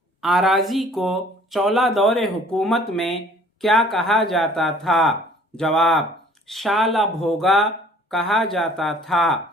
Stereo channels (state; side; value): normal; both; correlation 0.54